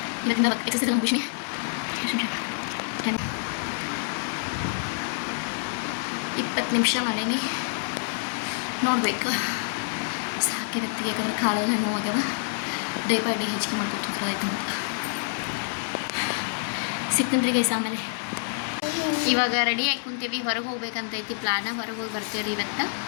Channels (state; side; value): silent; right; digital silence